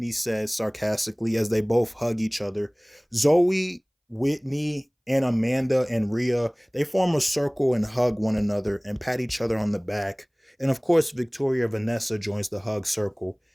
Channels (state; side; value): identical; both; correlation 1.00